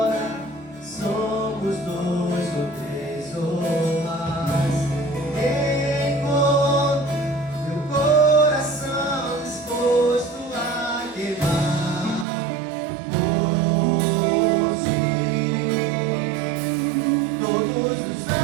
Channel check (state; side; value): drops out; left; at 12.2 s